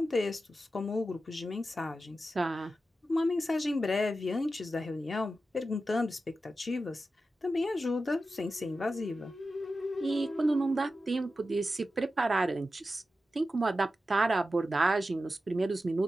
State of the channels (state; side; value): normal; both; correlation 0.92